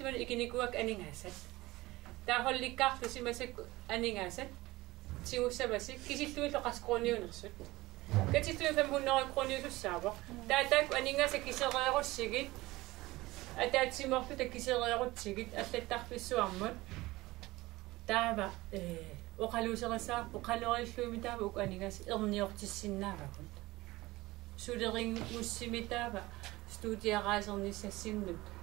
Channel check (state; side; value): quieter; left; 19.4 dB